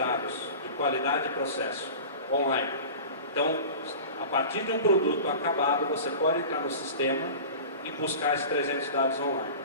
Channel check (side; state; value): both; inverted; correlation -0.36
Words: de qualidade e processo online. Então, a partir de um produto acabado, você pode entrar no sistema e buscar esses 300 dados online.